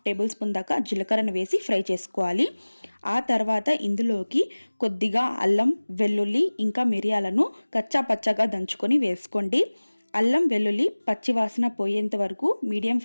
టేబుల్ స్పూన్ దాకా జీలకర్రను వేసి ఫ్రై చేసుకోవాలి. ఆ తర్వాత ఇందులోకి కొద్దిగా అల్లం, వెల్లుల్లి ఇంకా మిరియాలను కచ్చా పచ్చగా దంచుకొని వేసుకోండి. అల్లం వెల్లుల్లి పచ్చివాసన పోయేంత వరకు మీడియం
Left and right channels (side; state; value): both; inverted; correlation -1.00